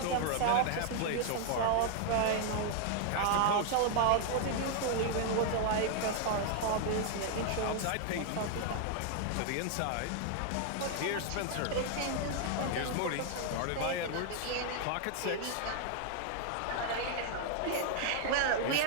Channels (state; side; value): different; both; correlation 0.00